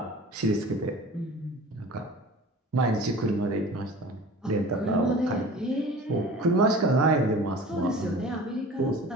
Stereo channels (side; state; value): both; normal; correlation 0.41